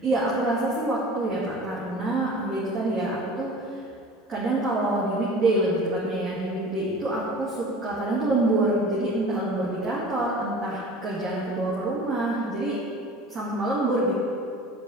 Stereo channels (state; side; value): normal; both; correlation 0.41